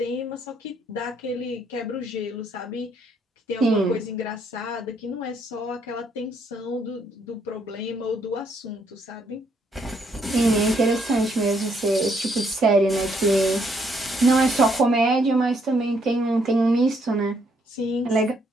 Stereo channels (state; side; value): normal; both; correlation 0.71